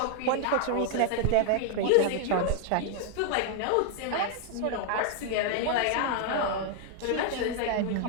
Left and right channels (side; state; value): both; different; correlation 0.00